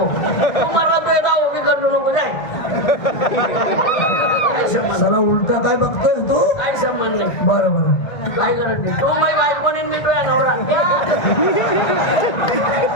तू मरला तू येता उभी करू नको जाय काही संबंध साला उलटा काय बघतोय तू काही संबंध नाही बरं बरं काय करत नाही तू माझी बायको नाही मी तुझ्या नवरा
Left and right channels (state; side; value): late; right; 1.9 ms